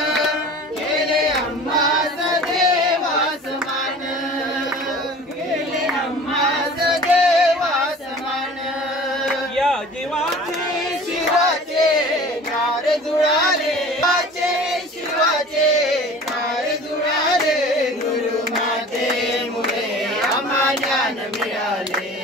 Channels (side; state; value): both; normal; correlation 0.43